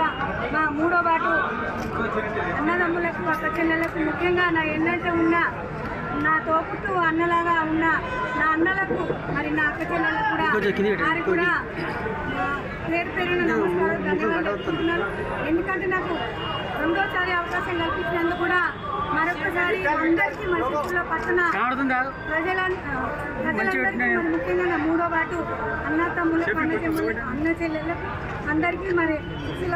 మా మూడో బాటు అన్నదమ్ములకు, అక్క చెల్లెలకు, ముఖ్యంగా నా ఎన్నైతే ఉన్న నా తోపుట్టు అన్నలాగా ఉన్న నా అన్నలకు మరి నా అక్క చెల్లెలకు కూడా వారికి కూడా పేరు పేరున నమస్కారం ధన్యవాదాలు తెలుపుతున్నాను. ఎందుకంటే నాకు రెండోసారి అవకాశం కల్పించినందుకు కూడా మరొకసారి అందరికీ మన సిరిసిల్ల పట్టణ ప్రజలందరికీ మరి ముఖ్యంగా నా మూడో వాటు అన్న తమ్ములకు అన్న చెల్లెళ్ళకు అందరికీ మరి సిరిసిల్ల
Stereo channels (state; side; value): identical; both; correlation 1.00